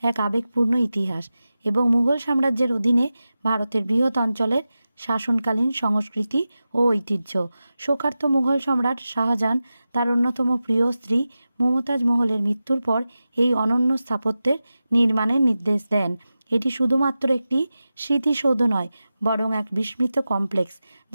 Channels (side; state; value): both; inverted; correlation -0.93